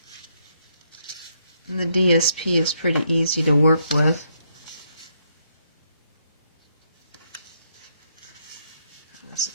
the DSP is pretty easy to work with.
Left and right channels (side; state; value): both; inverted; correlation -0.75